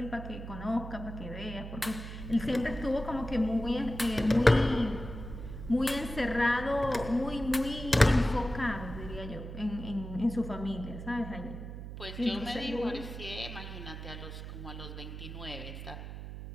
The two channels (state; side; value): noise; right; hum, 9 dB below the sound